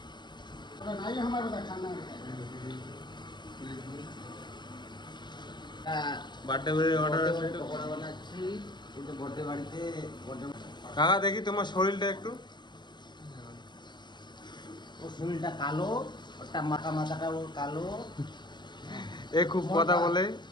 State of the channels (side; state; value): right; late; 0.21 ms